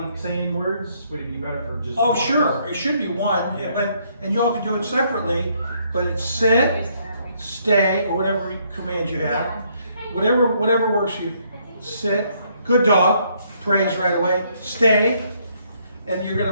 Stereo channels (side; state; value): both; inverted; correlation -0.69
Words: saying words? Would it be better for just? Oh, one? sure, it should be one, and y'all can do it separately, but it's sit, stay, or whatever command you have. Whatever works for you. Sit, good dog, praise right away. Stay, and